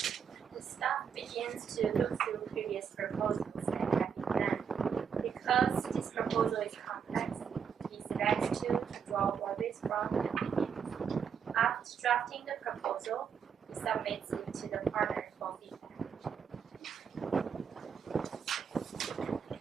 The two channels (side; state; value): left; quieter; 7.1 dB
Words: staff begins to look through previous proposals and recommend. Because this proposal is complex, it is best to draw always from the beginning. After drafting the proposal, he submits it to the partner for feedback.